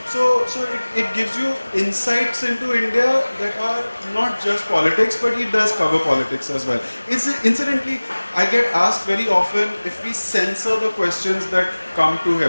So it gives you insights into India that are not just politics, but he does cover politics as well. Incidentally, I get asked very often if we censor the questions that come to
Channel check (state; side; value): inverted; both; correlation -1.00